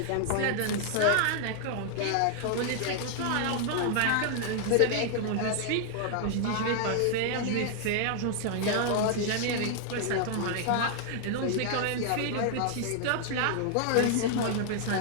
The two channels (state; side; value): different; both; correlation 0.00